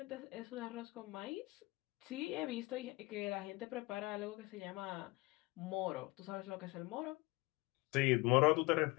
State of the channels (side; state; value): right; quieter; 23.1 dB